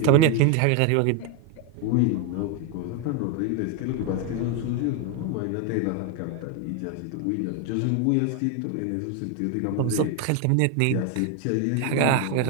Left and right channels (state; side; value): different; both; correlation 0.01